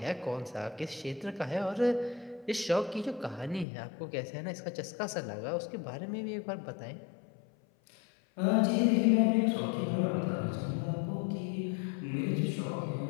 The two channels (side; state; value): right; drops out; at 3.7 s